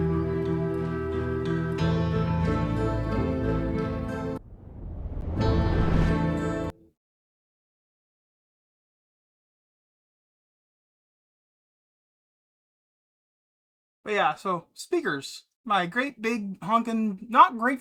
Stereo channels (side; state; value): both; identical; correlation 1.00